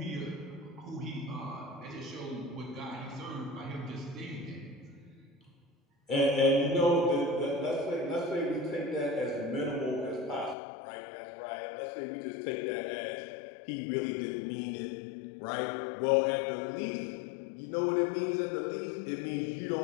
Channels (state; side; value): drops out; right; at 10.6 s